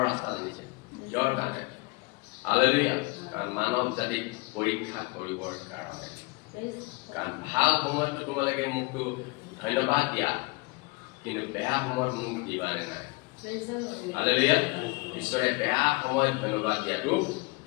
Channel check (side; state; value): right; quieter; 27.1 dB